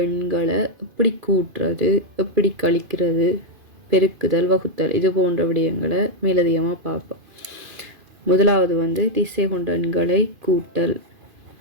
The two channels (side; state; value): left; late; 2.5 ms